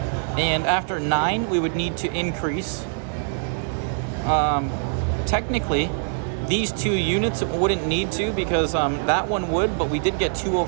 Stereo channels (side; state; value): left; silent; 63 dB below the other